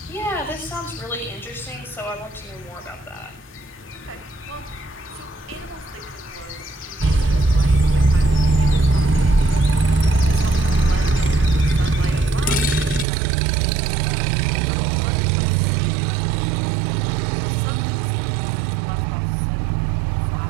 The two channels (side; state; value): left; drops out; at 13.1 s